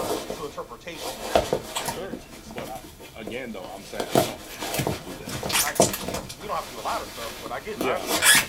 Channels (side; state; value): both; identical; correlation 1.00